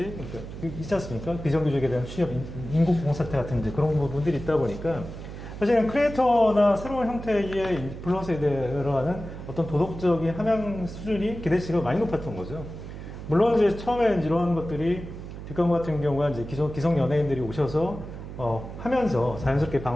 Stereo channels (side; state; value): right; noise; hum, 11 dB below the sound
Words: 그러니까 있지 않습니까? 비정규직에 대한 취업, 인구봉 사태 같은 이제 그런 부분들이 있다 보니까 사실은 크리에이터나 새로운 형태의 인플루언서에 들어가는 어떤 도덕적인 함양 수준이 기대치가 많이 높았던 거죠. 물론 이제 처음에 이런 것들이 뒷광고 같은 경우가 이제 기성 연예인들이 오셔서 하면서 자연스럽게